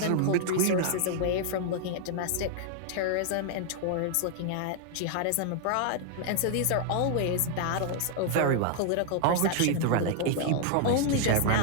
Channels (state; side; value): different; both; correlation 0.00